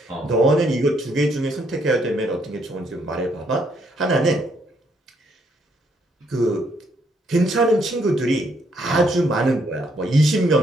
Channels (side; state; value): both; normal; correlation 0.72